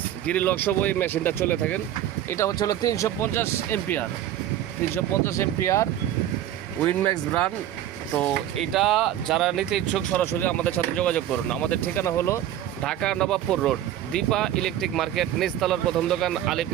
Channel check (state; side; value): quieter; left; 11.9 dB